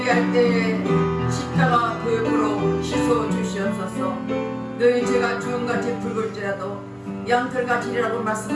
때에 십자가 보이프로 씻어 주시옵소서. 할지라도 양털같이리라고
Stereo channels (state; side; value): identical; both; correlation 1.00